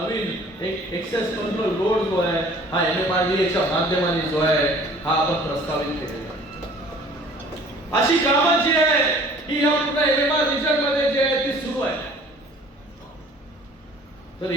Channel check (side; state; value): both; normal; correlation 0.51